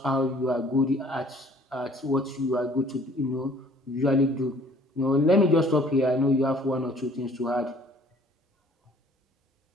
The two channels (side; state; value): both; normal; correlation 0.56